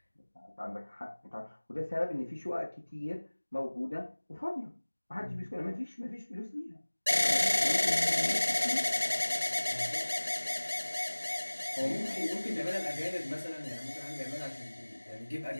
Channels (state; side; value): inverted; both; correlation -1.00